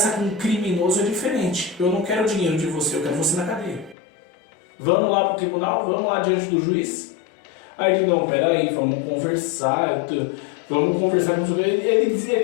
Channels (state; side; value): drops out; right; at 4.0 s